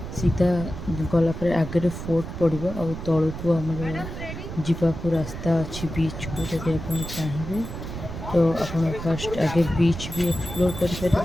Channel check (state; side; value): noise; right; rumble, 8 dB below the sound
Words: सीधा गलापर आगे फोर्ट पड़ो और तलू को आमर जावाक रास्ता अच्छी बीच को। जदि आप चाहिए तो आप फास्ट आगे बीच भी एक्सप्लोर